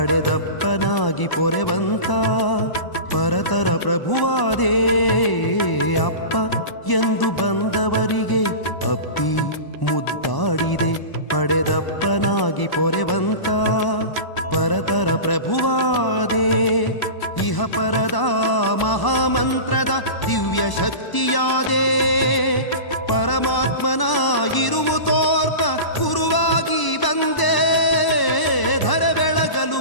ಪೊರೆವಂತ ಪರತರ ಪ್ರಭುವಾದೇ. ಅಪ್ಪ ಎಂದು ಬಂದವರಿಗೆ ಅಪ್ಪಿ ಮುದ್ದಾಡಿದೆ, ಪಡೆದಪ್ಪನಾಗಿ ಪೊರೆವಂತ ಪರತರ ಪ್ರಭುವಾದೇ. ಇಹ ಪರದ ಮಹಾಮಂತ್ರದ ದಿವ್ಯ ಶಕ್ತಿಯಾದೆ ಪರಮಾತ್ಮನ ಇರುವು ತೋರ್ಪ ಗುರುವಾಗಿ ಬಂದೆ ಧರ ಬೆಳಗಲು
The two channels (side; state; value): right; late; 1.0 ms